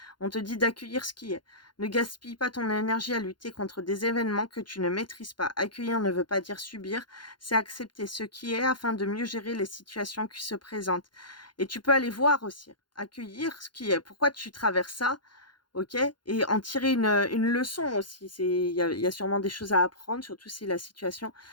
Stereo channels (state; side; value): late; right; 0.71 ms